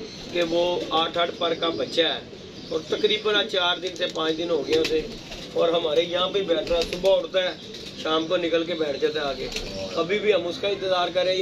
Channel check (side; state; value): both; identical; correlation 1.00